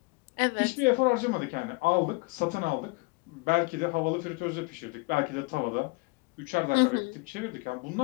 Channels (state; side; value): quieter; right; 27.6 dB